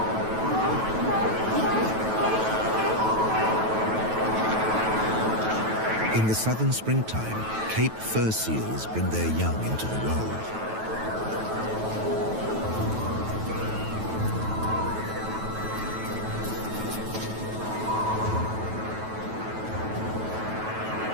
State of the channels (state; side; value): late; left; 9.2 ms